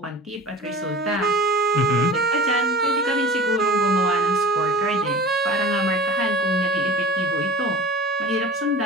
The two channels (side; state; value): both; normal; correlation 0.39